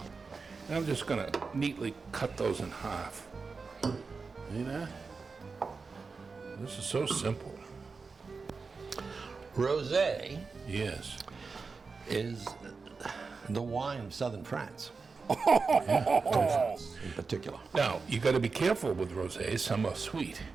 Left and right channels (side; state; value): left; quieter; 4.6 dB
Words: And I'm just gonna neatly cut those in half. See that? This is so simple. Rosé Yes. is the wine of southern France. In particular. Now, you gotta be careful with rosé. Some are sweet.